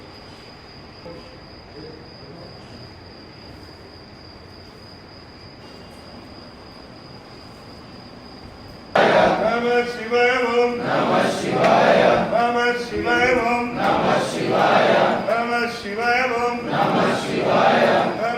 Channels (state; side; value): identical; both; correlation 1.00